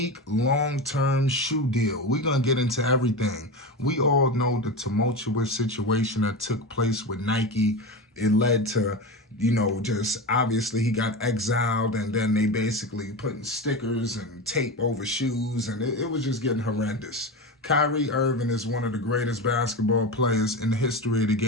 long-term shoe deal. We're going to get into everything. We all know the tumultuous situation that took place with Nike. It led to, just obviously he got exiled, and then they basically putting stickers and tape over shoes, and it was just getting horrendous. Kyrie Irving is one of the greatest basketball players in the history of the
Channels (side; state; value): both; normal; correlation 0.23